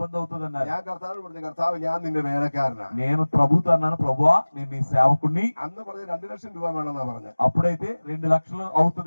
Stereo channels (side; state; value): both; inverted; correlation -1.00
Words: అవుతుంది అన్నారు. ഞാൻ കർത്താവ് പറഞ്ഞു, കർത്താവ് ഞാൻ നിന്റെ വേലക്കാരനാ. నేను ప్రభుతో అన్నాను, ప్రభువా నేను నీ సేవకుణ్ణి. അന്ന് പറഞ്ഞ 2 ലക്ഷം രൂപ വേണമെന്നാ പറഞ്ഞു. అప్పుడైతే 2 లక్షలు